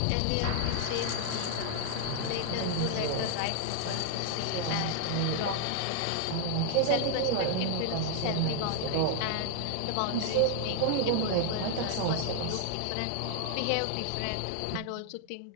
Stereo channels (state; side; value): different; both; correlation 0.00